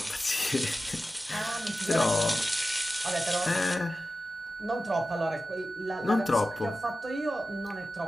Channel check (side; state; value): both; normal; correlation 0.93